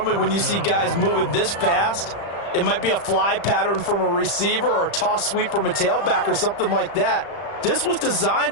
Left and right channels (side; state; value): right; late; 35 ms